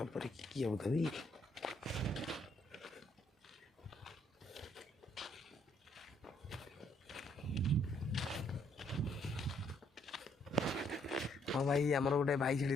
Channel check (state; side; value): normal; both; correlation 0.69